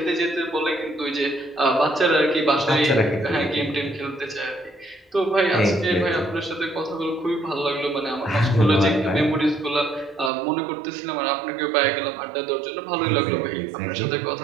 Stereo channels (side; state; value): left; drops out; at 10.3 s